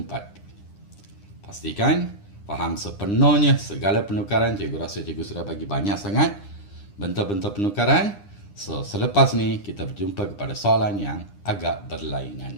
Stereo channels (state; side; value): late; right; 9.9 ms